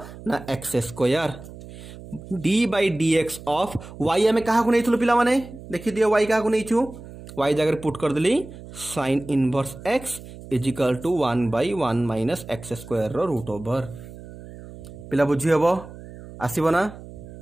ना x square d by dx of y हमें कहा को नैथुलो पिला माने देखि दियो y कहा को नैछु y जगह पुट कर देली sin इनवर्स x is equal to 1/1 minus x square रो रूट ओवर पिला बुझी हबो आसीबो ना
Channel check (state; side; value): noise; right; hum, 15 dB below the sound